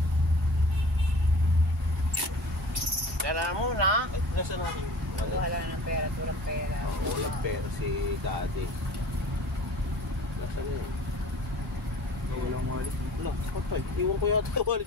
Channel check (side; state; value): both; normal; correlation 0.44